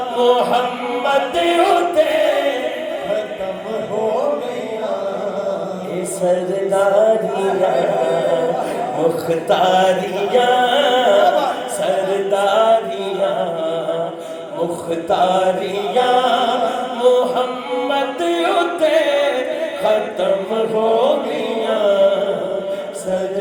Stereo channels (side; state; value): both; identical; correlation 1.00